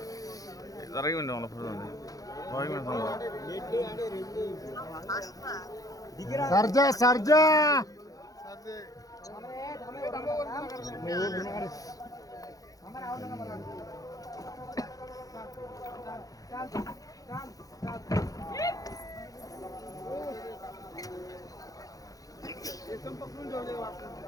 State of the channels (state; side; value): late; right; 0.17 ms